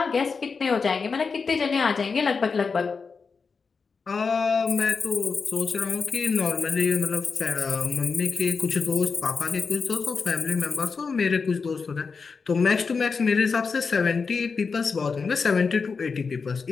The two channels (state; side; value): quieter; right; 5.0 dB